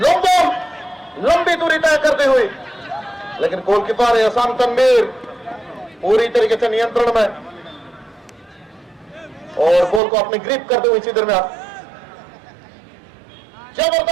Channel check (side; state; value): left; drops out; at 10.0 s